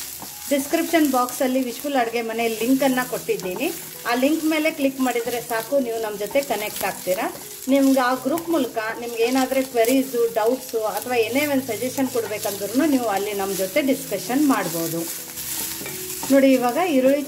ಡಿಸ್ಕ್ರಿಪ್ಷನ್ ಬಾಕ್ಸಲ್ಲಿ ವಿಶ್ಫುಲ್ ಅಡುಗೆ ಮನೆ ಲಿಂಕನ್ನು ಕೊಟ್ಟಿದ್ದೀನಿ. ಆ ಲಿಂಕ್ ಮೇಲೆ ಕ್ಲಿಕ್ ಮಾಡಿದರೆ ಸಾಕು, ನೀವು ನಮ್ಮ ಜೊತೆ ಕನೆಕ್ಟ್ ಆಗ್ತೀರಾ. ನಿಮ್ಗೆ ಆ ಗ್ರೂಪ್ ಮೂಲಕ ನಿಮ್ಗೆ ಏನಾದರೂ ಕ್ವೆರೀಸು, ಡೌಟ್ಸು ಅಥವಾ ಏನೇ ಒಂದು ಸಜೆಷನ್ ಕೊಡಬೇಕಂದ್ರೂ ನೀವು ಅಲ್ಲಿ ನಮ್ಮ ಜೊತೆ ಡಿಸ್ಕಷನ್ ಮಾಡ್ಬೋದು. ನೋಡಿ ಇವಾಗ ಈರುಳ್ಳಿ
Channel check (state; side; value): identical; both; correlation 1.00